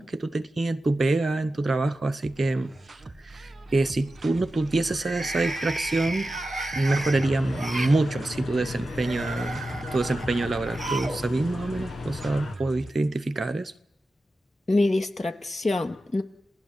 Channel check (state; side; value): normal; both; correlation 0.92